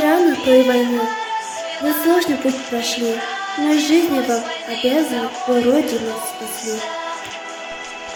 той войны. Вы сложный путь прошли, но жизни вам обязаны, вы Родину спасли.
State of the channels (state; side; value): identical; both; correlation 1.00